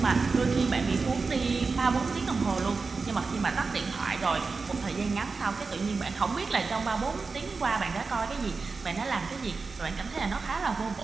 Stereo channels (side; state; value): left; quieter; 4.4 dB